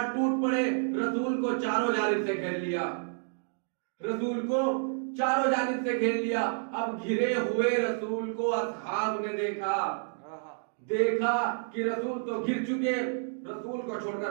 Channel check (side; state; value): left; silent; digital silence